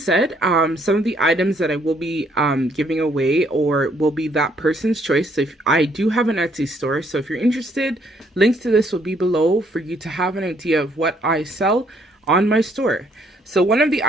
some of the items that I will be giving away or will be that person's choice. So if I do have an Etsy store, so if you're interested, links to this will be below for you to have an idea of what I sell on my store. So one of the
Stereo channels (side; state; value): both; normal; correlation 0.68